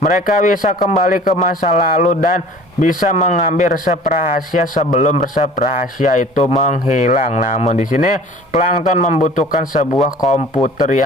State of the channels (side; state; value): both; normal; correlation 0.46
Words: bisa kembali ke masa lalu dan bisa mengambil resep rahasia sebelum resep rahasia itu menghilang. Namun di sini Plankton membutuhkan sebuah komputer